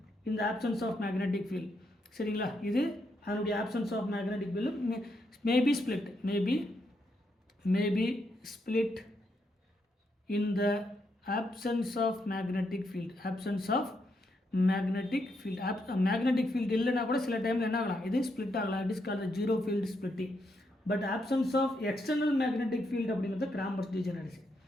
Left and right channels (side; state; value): both; normal; correlation 0.79